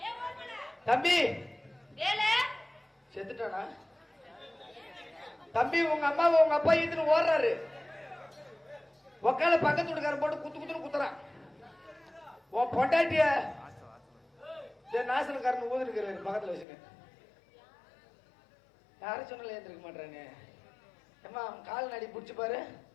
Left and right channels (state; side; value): drops out; right; at 16.7 s